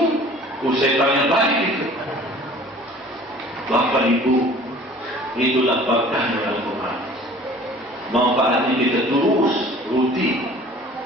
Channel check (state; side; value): normal; both; correlation 0.48